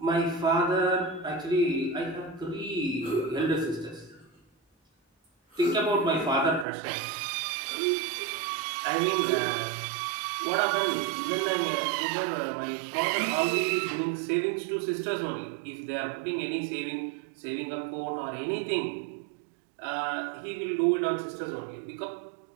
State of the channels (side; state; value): left; drops out; at 6.7 s